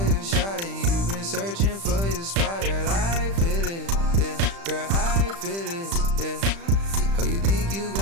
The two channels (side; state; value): left; late; 35 ms